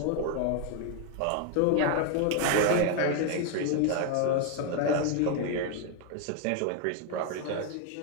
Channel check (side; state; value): both; different; correlation 0.01